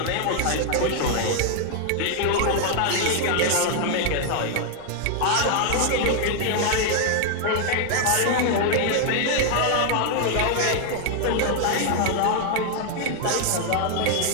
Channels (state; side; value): different; both; correlation 0.00